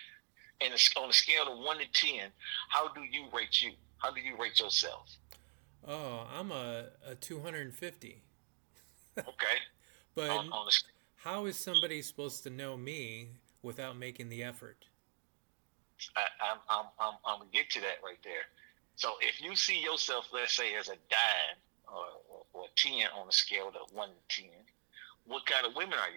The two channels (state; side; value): silent; left; 51 dB below the other